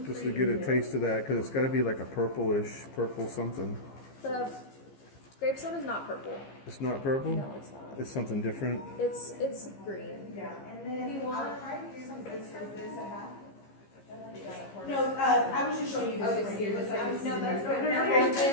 just to get a taste of that, because it's got to be like a purple something. The grape soda is not purple. It's not purple? No, it's not. It's something different? It's green. Yeah, and then You want- I'll try to do some this a half. No, I was just showing you this. Okay, right so here. you're just like, no, that's good. I want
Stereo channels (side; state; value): right; late; 15 ms